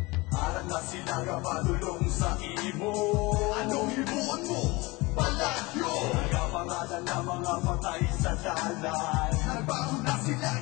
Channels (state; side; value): quieter; right; 23.5 dB